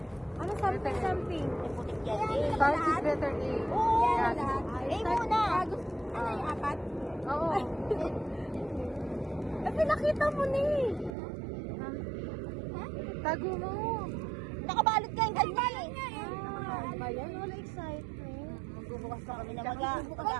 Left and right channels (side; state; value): left; drops out; at 11.1 s